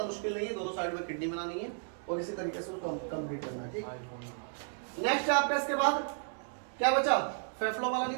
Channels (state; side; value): silent; left; digital silence